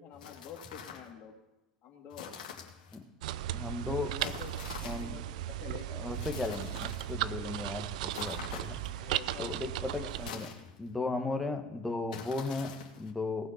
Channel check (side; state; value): both; normal; correlation 0.36